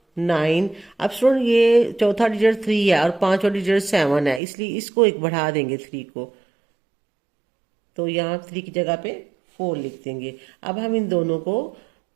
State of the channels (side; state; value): left; drops out; at 4.4 s